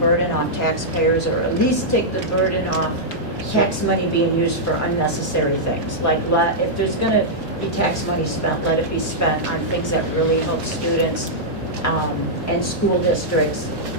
off taxpayers, or at least take the burden off tax money being used for unnecessary things. Like, if there's gonna be tax money spent, let it be spent on things that really help students, and school districts,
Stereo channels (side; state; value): both; normal; correlation -0.08